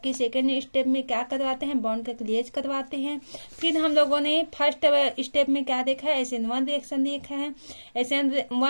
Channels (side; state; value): both; inverted; correlation -1.00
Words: सेकेंड स्टेप में क्या करवाते हैं, बॉन्ड का क्लीवेज करवाते हैं। फिर हम लोगों ने फर्स्ट स्टेप में क्या देखा है, SN1 रिएक्शन देखा है।